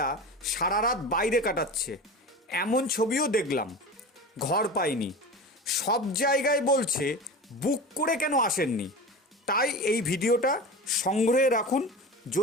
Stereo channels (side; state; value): both; normal; correlation 0.31